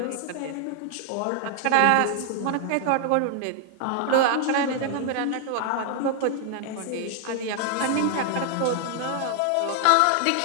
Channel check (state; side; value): different; both; correlation 0.00